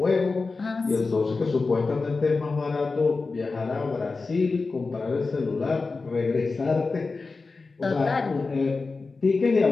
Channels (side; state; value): right; quieter; 4.0 dB